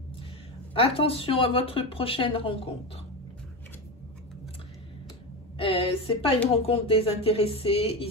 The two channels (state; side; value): normal; both; correlation 0.19